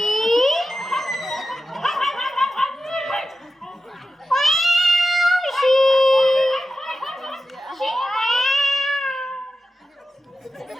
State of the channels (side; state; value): both; normal; correlation 0.92